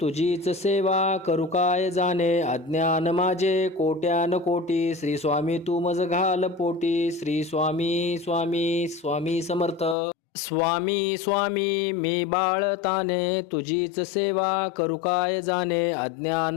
तुझीच सेवा करू काय जाणे. अज्ञान माझे कोट्यान कोटी श्री स्वामी तू मज घाल पोटी. श्री स्वामी स्वामी स्वामी समर्थ. स्वामी स्वामी मी बाळताने तुझीच सेवा करू काय जाणे.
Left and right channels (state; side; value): drops out; right; at 10.0 s